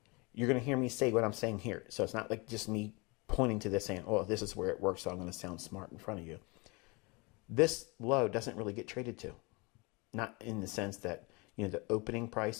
you're going to hear me say what I'm saying here. So it's not like just me pointing to this saying, oh, this is where it works, so I'm going to sound smart in front of you. This low doesn't really get traded to. Not in the sense that, you know, the opening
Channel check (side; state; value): right; quieter; 27.8 dB